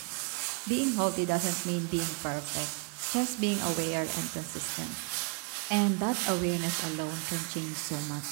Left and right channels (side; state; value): left; quieter; 33.3 dB